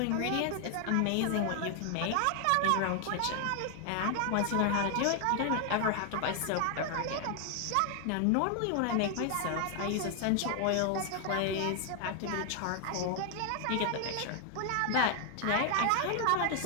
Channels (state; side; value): different; both; correlation 0.00